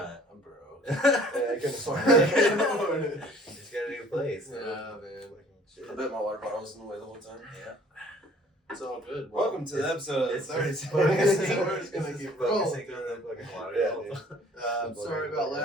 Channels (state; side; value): normal; both; correlation 0.54